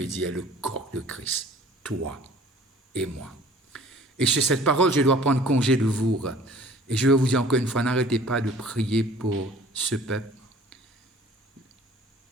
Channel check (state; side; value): normal; both; correlation 0.50